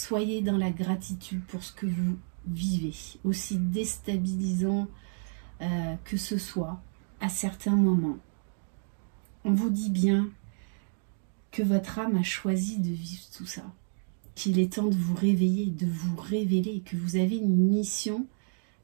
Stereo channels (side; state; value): left; silent; digital silence